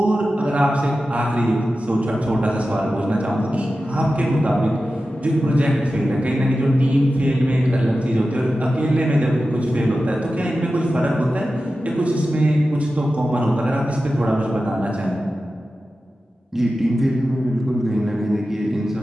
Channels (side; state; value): both; normal; correlation 0.93